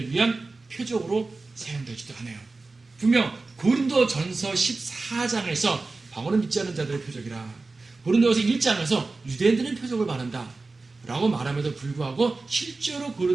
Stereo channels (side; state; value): left; quieter; 3.6 dB